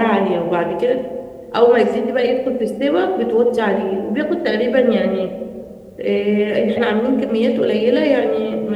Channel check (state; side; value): identical; both; correlation 1.00